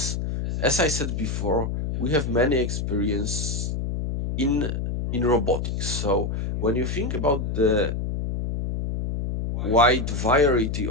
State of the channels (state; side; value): noise; left; hum, 2 dB below the sound